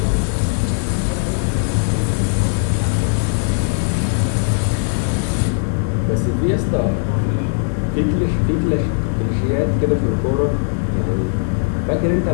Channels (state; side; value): silent; right; digital silence